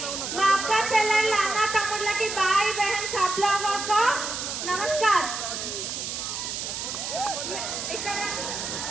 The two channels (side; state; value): right; noise; hiss, 4 dB below the sound